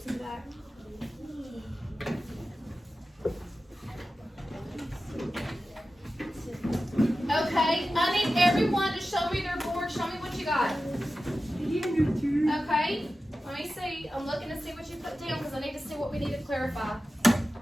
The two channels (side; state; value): both; normal; correlation 0.94